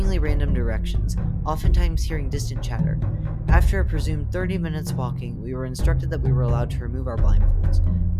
random directions, oftentimes hearing distant chatter. After a presumed 30 minutes walking, we were instructed that we were allowed to remove our blindfolds.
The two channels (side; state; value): both; identical; correlation 1.00